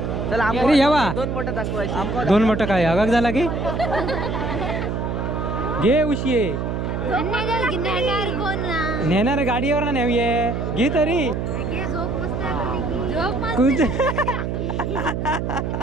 अरे यावा 2 मोठं काय हगाक झाला की घे उशी नेणार गाडीवर ना नेऊये घे तरी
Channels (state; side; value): noise; right; hum, 2 dB below the sound